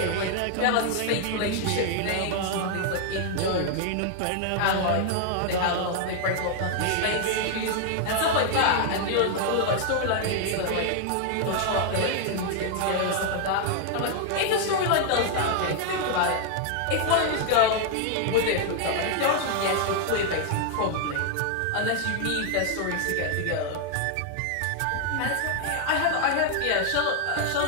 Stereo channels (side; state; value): both; different; correlation 0.00